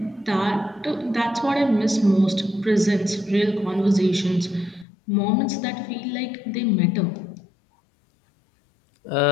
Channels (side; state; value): right; drops out; at 4.9 s